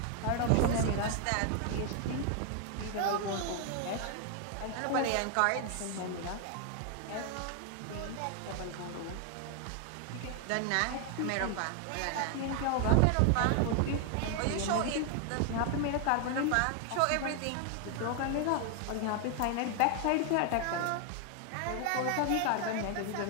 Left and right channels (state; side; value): different; both; correlation 0.00